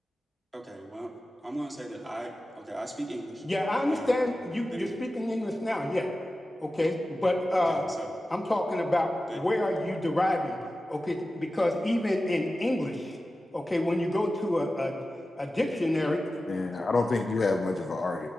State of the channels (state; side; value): normal; both; correlation 0.94